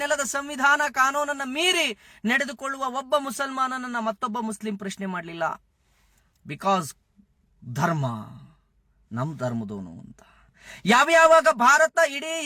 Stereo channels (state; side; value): identical; both; correlation 1.00